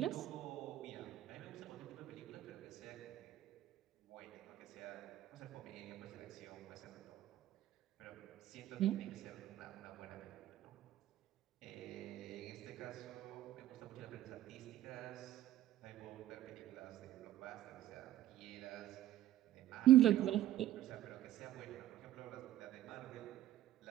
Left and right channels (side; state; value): left; quieter; 13.6 dB